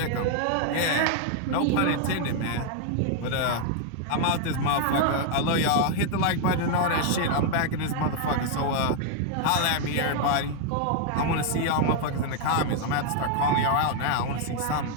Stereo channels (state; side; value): different; both; correlation 0.00